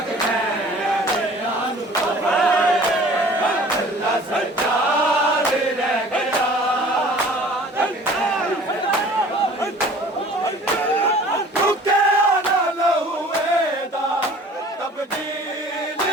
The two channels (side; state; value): both; normal; correlation 0.48